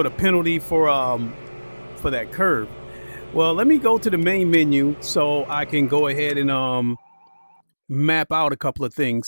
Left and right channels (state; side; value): inverted; both; correlation -1.00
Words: a penalty for that curve. Well, let me go to the main menu so I can go ahead and map out a couple of